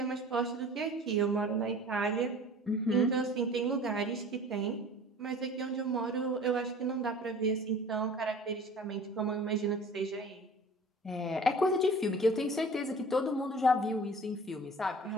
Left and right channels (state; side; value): normal; both; correlation 0.44